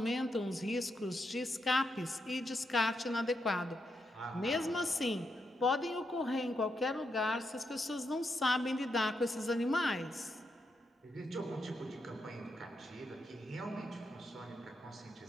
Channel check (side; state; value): both; normal; correlation 0.83